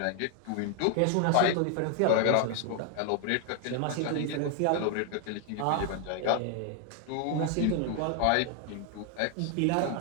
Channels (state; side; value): different; both; correlation 0.00